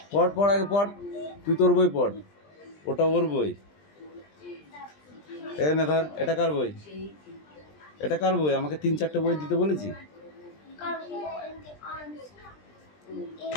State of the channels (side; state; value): right; late; 20 ms